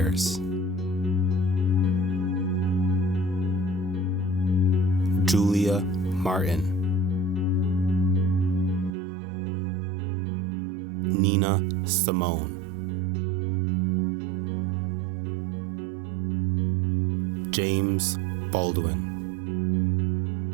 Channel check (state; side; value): drops out; left; at 8.9 s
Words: Julia Martin, Nina Simone, James Baldwin,